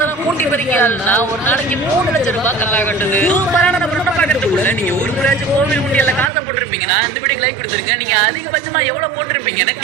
கூட்டி பறிக்காதுன்னா ஒரு நாளைக்கு 3 லட்சம் ரூபாய் கல்லா கட்டுது. சூப்பரான நம்ம பாக்கிறதுக்குள்ள நீங்க ஒரு முறையாச்சும் கோவில் உண்டியல்ல காசை போட்டிருப்பீங்கன்னா இந்த வீடியோக்கு லைக் கொடுத்துருங்க. நீங்க அதிகபட்சமா எவ்வளவு போட்டிருப்பீங்கன்னு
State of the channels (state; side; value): drops out; left; at 6.3 s